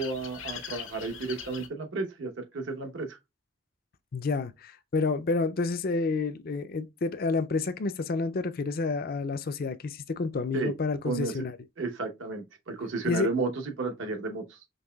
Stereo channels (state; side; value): normal; both; correlation 0.34